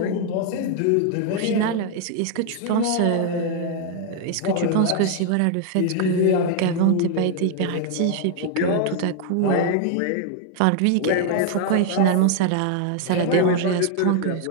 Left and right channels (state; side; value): different; both; correlation 0.00